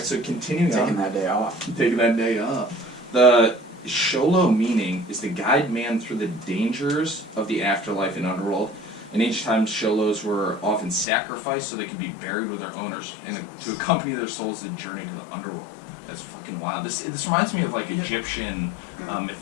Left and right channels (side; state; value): right; drops out; at 11.1 s